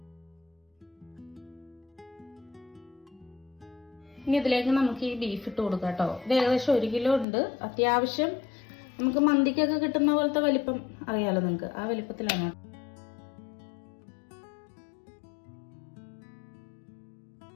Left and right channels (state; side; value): drops out; right; at 7.2 s